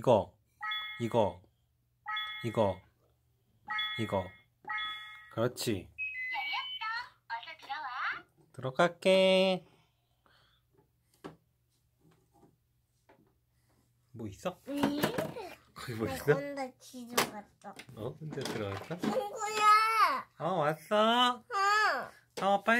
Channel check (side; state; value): both; identical; correlation 1.00